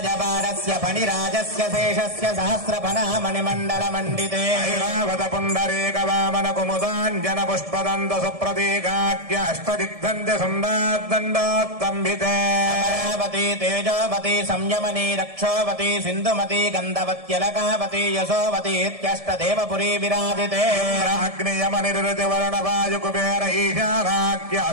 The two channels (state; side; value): late; left; 1.7 ms